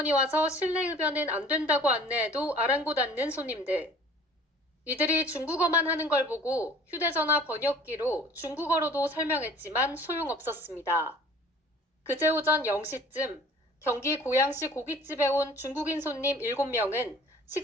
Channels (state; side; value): normal; both; correlation 0.49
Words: 와서 실내 흡연은 안 된다고 안내해도 아랑곳 않는 손님들. 이들이 중국어만 하는 걸 보고 휴대전화 번역기로 중국어로도 설명했지만 소용없었습니다. 그제 오전 0시쯤 경기 고양시 고깃집에 온 중국인 손님 7명은